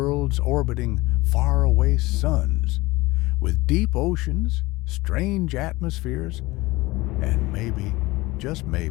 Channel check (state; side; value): quieter; right; 20.8 dB